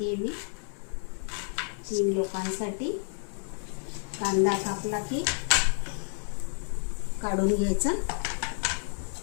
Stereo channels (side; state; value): right; silent; 57 dB below the other